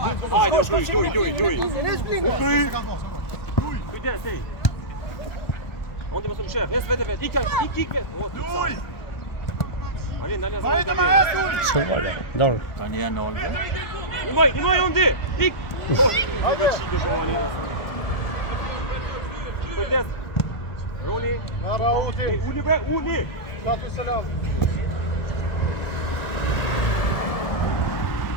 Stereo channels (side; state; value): right; late; 1.5 ms